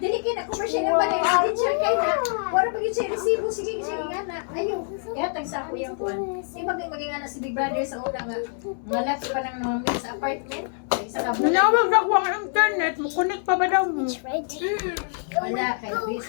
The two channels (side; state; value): right; silent; 62 dB below the other